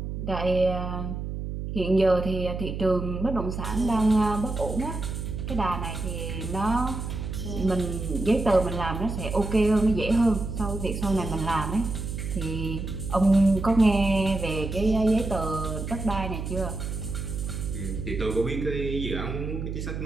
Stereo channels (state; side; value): noise; right; hum, 5 dB below the sound